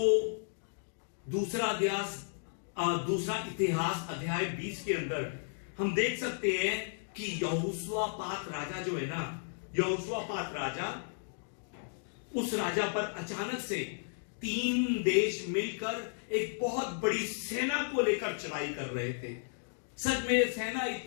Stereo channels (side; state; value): right; silent; digital silence